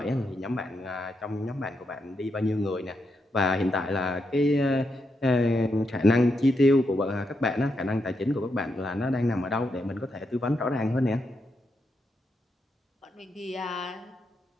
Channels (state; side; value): normal; both; correlation 0.82